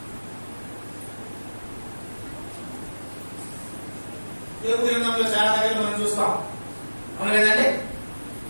దేవుడి గ్రంథంలో చాలా దగ్గర మనం చూస్తాం, అవును కదండి?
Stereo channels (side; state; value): both; inverted; correlation -1.00